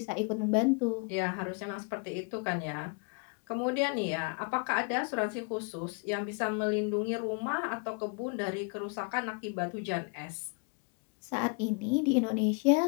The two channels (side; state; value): right; quieter; 35.5 dB